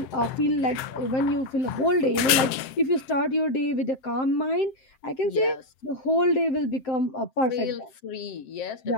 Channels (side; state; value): right; late; 7.6 ms